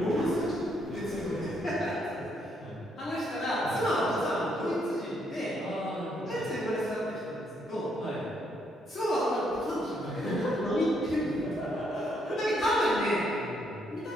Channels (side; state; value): both; normal; correlation 0.73